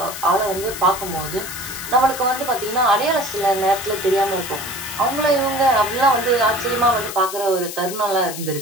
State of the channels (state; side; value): noise; left; hiss, 9 dB below the sound